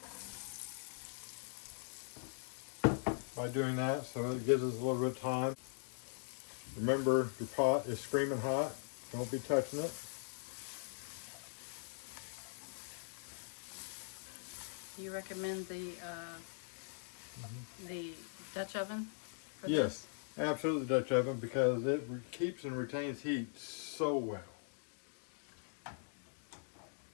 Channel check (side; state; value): right; silent; digital silence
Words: by doing that, so it gives us a little bit of time. Remember, your pot is screaming hot. Don't be touching it. Do you recommend the Dutch oven for Yes, absolutely Dutch oven, because it keeps and retains heat so well.